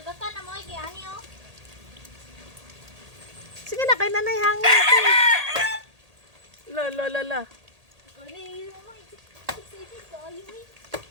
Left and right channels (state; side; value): late; left; 1.8 ms